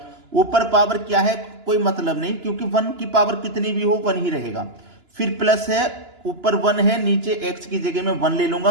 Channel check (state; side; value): late; left; 2.9 ms